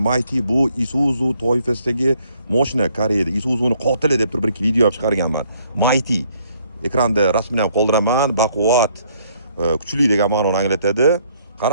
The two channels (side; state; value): both; inverted; correlation -0.66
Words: Mighty bu Isuzu toifasidagi mashina Koreyada. Isuzuning qotili deb turib bir video olib chiqarganman. Mighty. Ekranda rasmini ham qoldiraman. Baquvvat, kuchli degan ma'noni anglatadi.